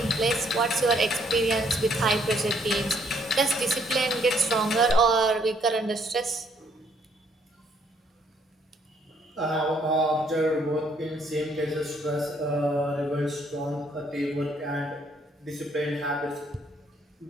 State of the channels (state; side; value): normal; both; correlation 0.68